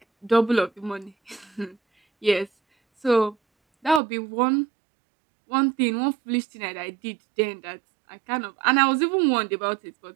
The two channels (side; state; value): left; drops out; at 4.0 s